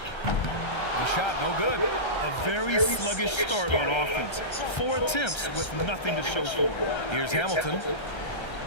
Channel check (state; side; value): late; right; 1.3 ms